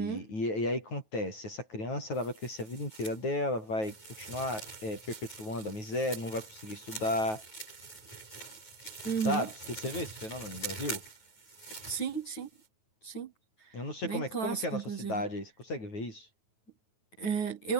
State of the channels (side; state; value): right; late; 9.3 ms